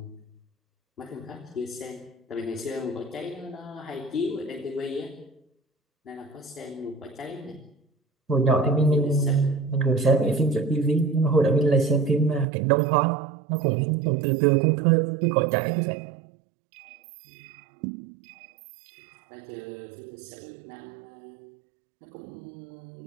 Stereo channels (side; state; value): left; drops out; at 12.5 s